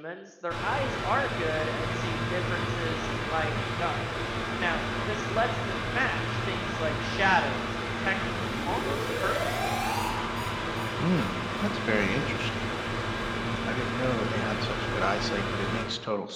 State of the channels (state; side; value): identical; both; correlation 1.00